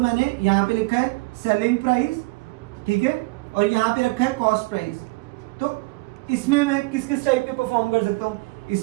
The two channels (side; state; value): left; quieter; 24.5 dB